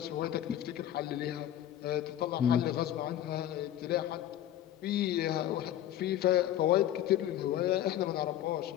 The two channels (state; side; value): quieter; right; 12.0 dB